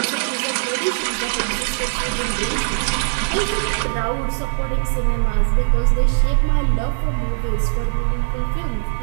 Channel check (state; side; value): silent; left; digital silence